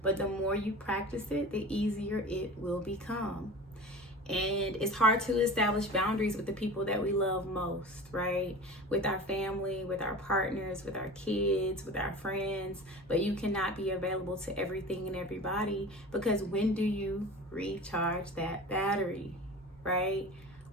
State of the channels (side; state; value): both; normal; correlation 0.35